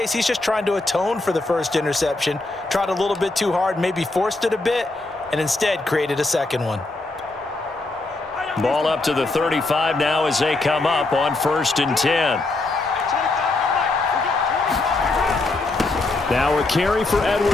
he's just trying to atone for the first interception. Tried a little bit too hard, maybe forced it a bit, and instead created a second one. Ball up to the 35 now as they come up on 1st and 10. Now a carry for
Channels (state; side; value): quieter; right; 3.1 dB